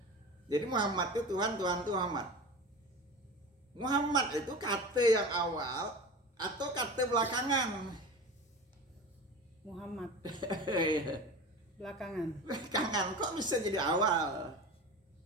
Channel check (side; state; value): both; normal; correlation 0.32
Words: Jadi Muhammad itu Tuhan Muhammad. Muhammad itu kata yang awal atau kata belakangan? Muhammad. Belakangan. Kok bisa jadi awal?